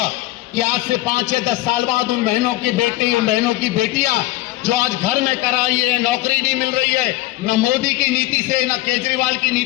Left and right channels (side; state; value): right; quieter; 17.9 dB